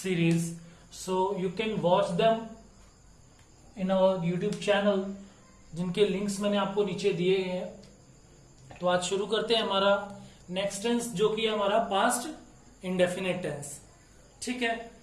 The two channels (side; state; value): both; identical; correlation 1.00